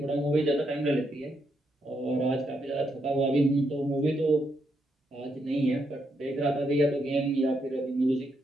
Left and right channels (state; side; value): normal; both; correlation 0.79